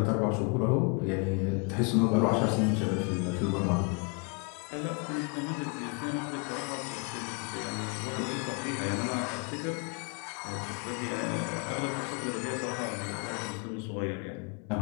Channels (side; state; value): right; quieter; 33.0 dB